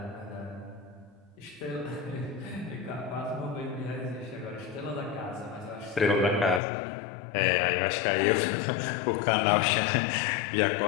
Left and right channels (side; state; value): right; drops out; at 6.6 s